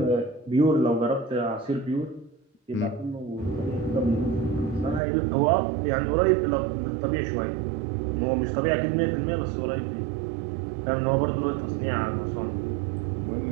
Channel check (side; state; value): left; drops out; at 5.0 s